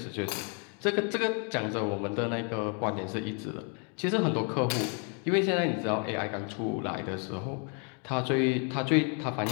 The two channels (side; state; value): right; quieter; 38.8 dB